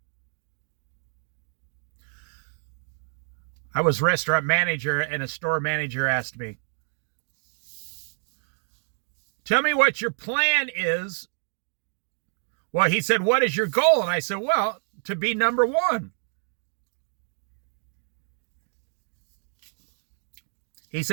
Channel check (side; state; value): left; silent; digital silence